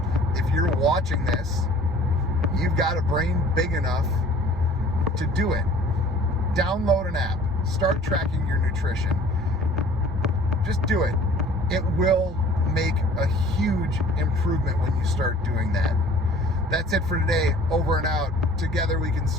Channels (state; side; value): normal; both; correlation 0.50